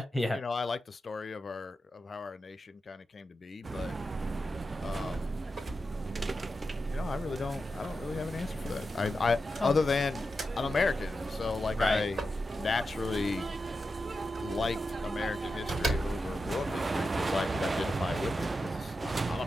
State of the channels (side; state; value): both; normal; correlation 0.89